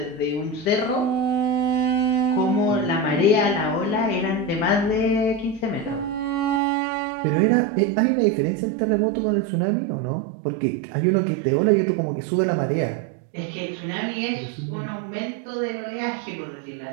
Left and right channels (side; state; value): left; drops out; at 6.6 s